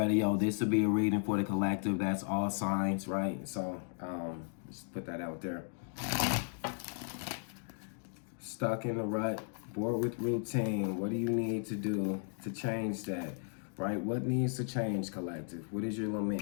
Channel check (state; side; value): silent; right; 54 dB below the other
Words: yo, this will be a reading for the collective. That's all signs, right? So just put that out there. Stuck in a rut, bored with routine. What do you need to do to change that, right? What needs to change, collective? What is your